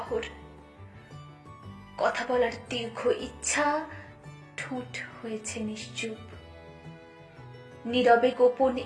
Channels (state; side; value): identical; both; correlation 1.00